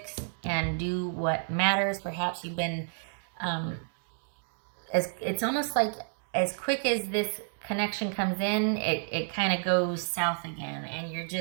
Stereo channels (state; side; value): silent; left; 58 dB below the other